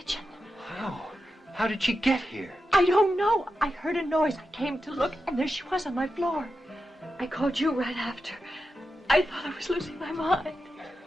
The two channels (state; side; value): normal; both; correlation 0.89